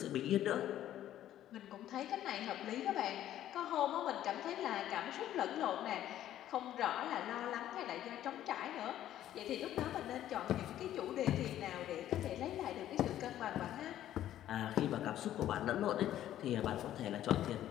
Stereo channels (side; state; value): right; quieter; 12.2 dB